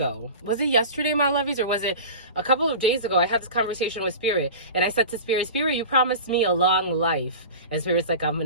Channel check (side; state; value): both; inverted; correlation -0.33